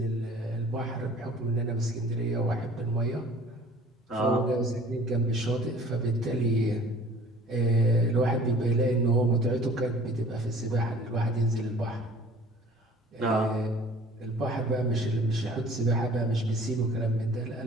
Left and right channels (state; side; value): normal; both; correlation 0.49